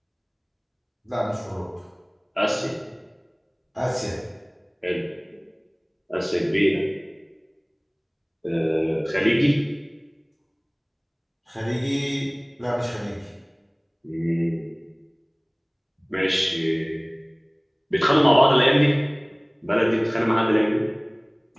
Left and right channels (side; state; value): both; identical; correlation 1.00